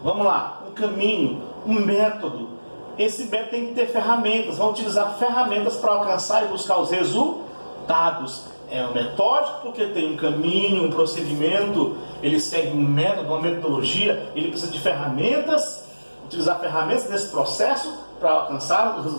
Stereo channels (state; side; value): inverted; both; correlation -1.00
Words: Vamos lá, um caminho, um método. Esse método tem que ter ferramentas, vão utilizar ferramentas para alcançar e buscar os resultados. É um metódico porque tem um caminho, um procedimento, ele segue um método, uma metodologia, ele precisa de ferramentas, utilizar ferramentas nesse processo para alcançar os